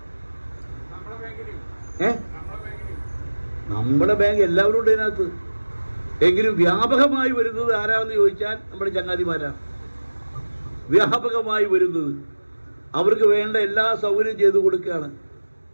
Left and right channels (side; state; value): both; inverted; correlation -1.00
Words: നമ്മുടെ ബാങ്ക് എല്ലാവരും ഉണ്ട് ഇതിനകത്ത്. എങ്കിലും വ്യാപകമായി വരുന്നത് ആരാന്ന് ചോദിച്ചാൽ നമ്മുടെ ചങ്ങാതിമാരാ. വ്യാപകമായി വരുന്നത് അവർക്ക് വേണ്ട എല്ലാ സൗകര്യം ചെയ്തു കൊടുക്കുകയാണ്.